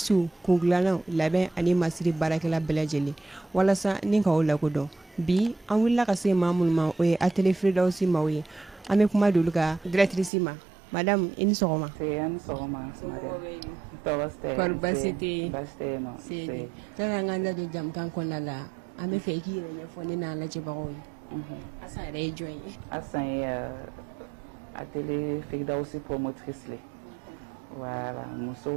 kungilannaw labɛn ani masiri baarakɛla bɛɛ lajɛlen walasa ni k'aw lakodɔn bi an wulila ka se maa minnu ma o ye atelier Firdausi maaw ye an bɛ kuma d'olu ka directrice ma madame i ni sɔgɔma. Ni sɔgɔma madame. Tɔɔrɔ tɛ baasi tɛ yen nɔ. Kan an ka da don jamukan kɔnɔna la an bɛ fɛ i k'i yɛrɛ ɲɛfɔ ne n'a lajɛbagaw ye. Asan yɛrɛ ye jɔn ye? Asan ye atelier Firdausi promotrice le. Voilà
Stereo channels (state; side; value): drops out; left; at 10.3 s